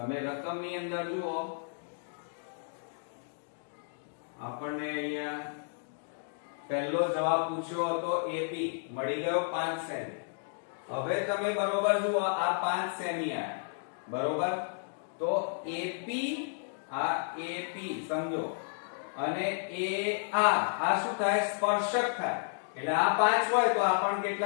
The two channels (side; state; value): right; silent; digital silence